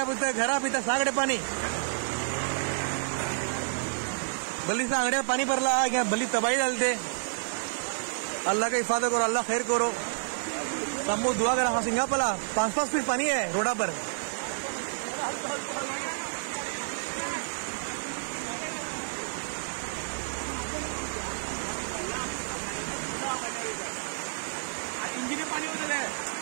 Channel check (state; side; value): silent; left; digital silence